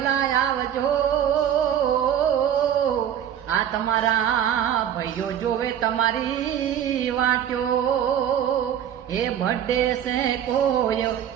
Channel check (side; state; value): left; quieter; 9.8 dB